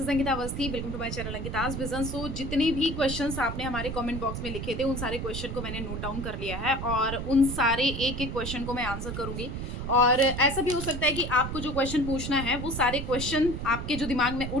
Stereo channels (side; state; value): right; noise; rumble, 5 dB below the sound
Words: Ankita Awasthi. Welcome to my channel Ankita's vision. So जितने भी क्वेश्चंस आपने हमारे कमेंट बॉक्स में लिखे थे उन सारे क्वेश्चन को मैंने नोट डाउन कर लिया है और उन सारे एक एक क्वेश्चन को मैं आंसर करूंगी। और ऐसा भी हो सकता है कि आपको जो क्वेश्चन पूछना है वो सारे क्वेश्चन आपके जो दिमाग में